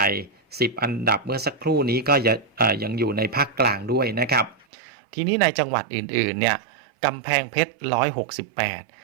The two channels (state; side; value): drops out; left; at 4.7 s